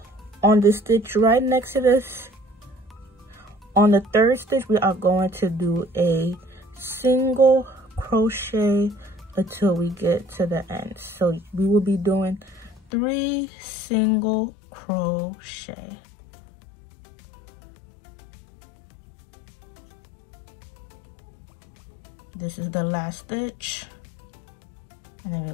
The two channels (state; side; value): drops out; right; at 12.8 s